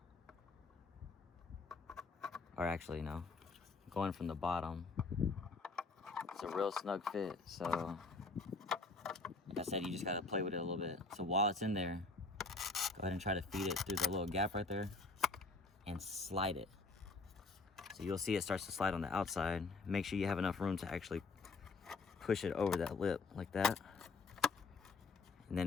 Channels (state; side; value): quieter; right; 3.8 dB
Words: Or actually, no, going from the bottom. It's a real snug fit, so I said, you just gotta play with it a little bit. So while it's in there, go ahead and try to feed it through the little gap right there and slide it. So you'll see it starts to slide on the outside. Make sure you have enough room to actually push it over that lip like that. And then